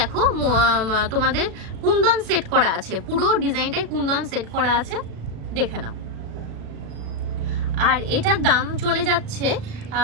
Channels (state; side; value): late; left; 36 ms